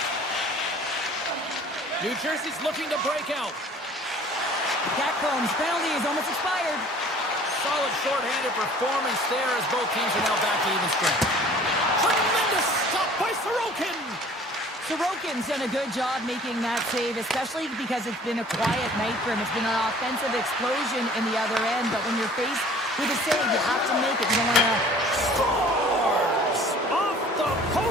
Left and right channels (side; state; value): both; normal; correlation 0.50